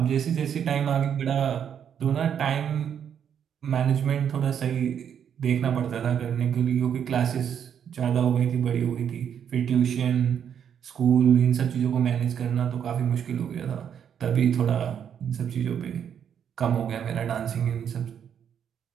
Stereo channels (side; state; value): left; quieter; 8.5 dB